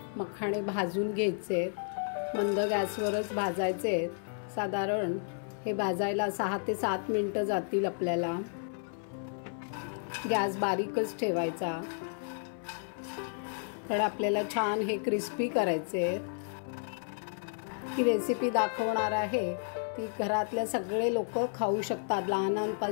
मखाणे भाजून घ्यायचे, मंद गॅसवरच भाजायचे। साधारण हे भाजायला 6 ते 7 मिनिटं जातील आपल्याला। गॅस बारीकच ठेवायचा, तर आपल्याला छान हे क्रिस्पी करायचे। ही रेसिपी दाखवणार आहे ती घरातले सगळे लोक खाऊ शकतात,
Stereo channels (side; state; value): right; silent; 56 dB below the other